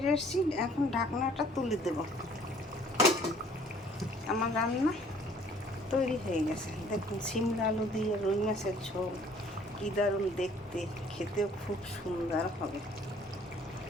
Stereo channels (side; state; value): both; normal; correlation 0.56